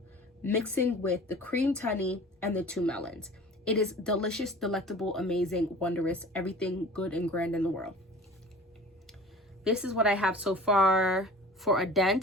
mixing with the creamed honey and the 2 melons. It is delicious, delectable, amazing, wondrous, everything good and grand in the world. This is what I have so far for a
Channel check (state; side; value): normal; both; correlation 0.42